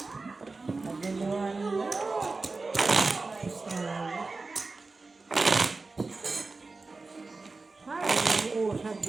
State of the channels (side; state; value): left; quieter; 3.7 dB